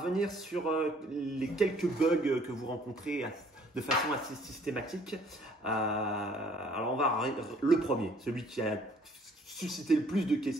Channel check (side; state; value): both; normal; correlation 0.59